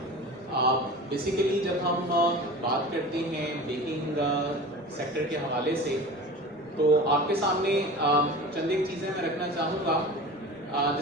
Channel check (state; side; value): noise; right; rumble, 30 dB below the sound